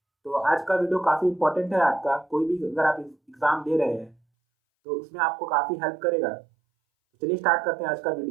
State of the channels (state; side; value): drops out; left; at 4.2 s